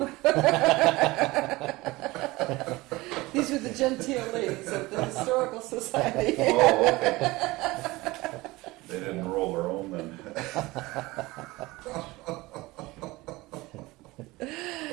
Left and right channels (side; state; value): left; quieter; 20.7 dB